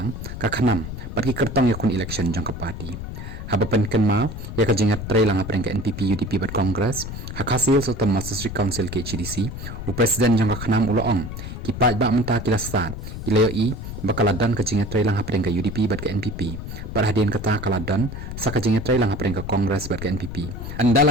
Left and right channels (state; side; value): noise; left; rumble, 8 dB below the sound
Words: ka khanam patki kertong yakun election jang ka party habapan kenma ya ka jinga tre lang apreng ka NPP UDP bat Congress hakasil sultan District Council ke CDC u president jang ka khanam uloong ki pat ba menta kilasat ilayo i bakaladan ka jinga tre lang apreng ka UDP bat ka NPP parhadin kata kaladan sa ka jinga tre lang apreng ka Congress bat ka NPP